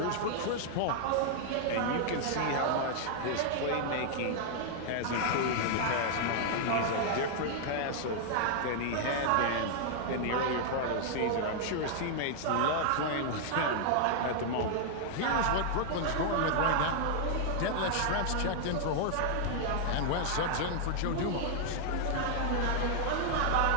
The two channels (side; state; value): both; different; correlation 0.00